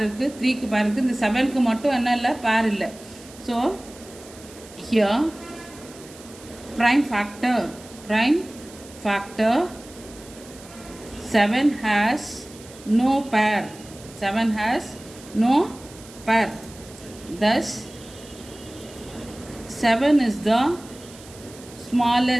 இருக்குது, 3க்கு பேர் இருக்குது, இந்த 7க்கு மட்டும் என்ன இல்லை? பேர் இல்லை. So here prime factor 7 has no pair. Thus 7 is the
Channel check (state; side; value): noise; right; hiss, 20 dB below the sound